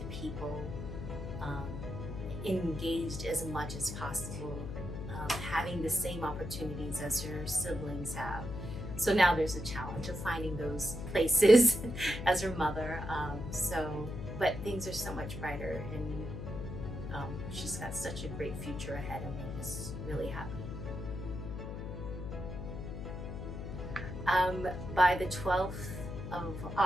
people, engaged as much as possible, having the same opportunities as her siblings have. So now there's a challenge of finding those places as her mother. But things are so much brighter, and she's got such a great future ahead, and we're just really happy. By the 12th of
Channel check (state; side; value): noise; left; hum, 7 dB below the sound